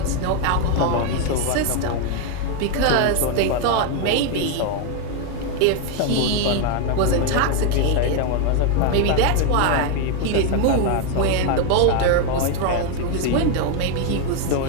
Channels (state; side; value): different; both; correlation 0.01